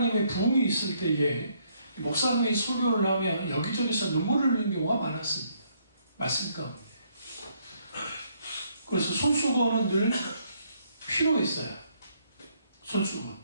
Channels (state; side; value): inverted; both; correlation -0.71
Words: 부흥이 있을 때에 목사님이 설교를 하면 여기저기서 눈물을 흘리는 경우가 많았습니다. 말씀 가운데. 그래서 손수건은 늘 필요했어요. 손수건.